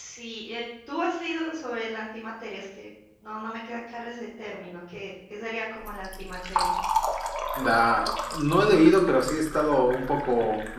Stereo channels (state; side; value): identical; both; correlation 1.00